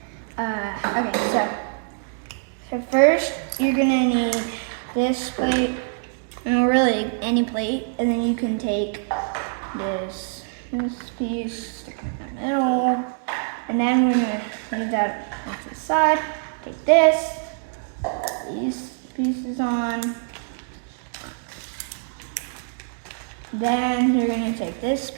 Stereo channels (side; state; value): left; silent; digital silence